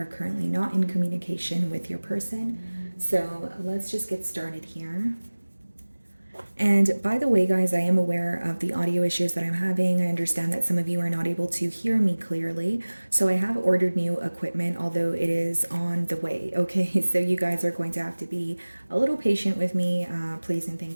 currently not in communication with your person. So let's just get started here. And by the way, guys, I am aware of the audio issues that I'm having. I understand that some of you are not able to hear me clearly. So I have ordered new equipment, although it is on the way. Okay, so you guys are going to have to be a little patient with me, please and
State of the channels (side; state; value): both; inverted; correlation -1.00